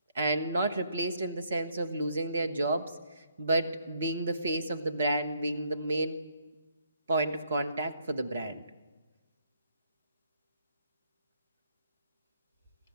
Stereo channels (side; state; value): both; inverted; correlation -0.70